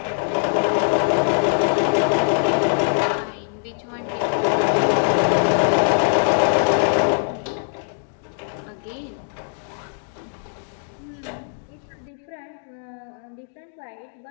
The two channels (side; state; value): right; silent; digital silence